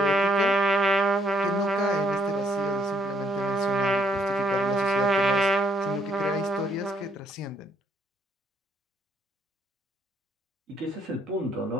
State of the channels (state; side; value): normal; both; correlation 0.68